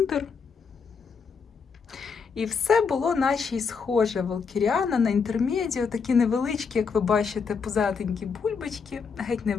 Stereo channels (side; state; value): right; quieter; 5.6 dB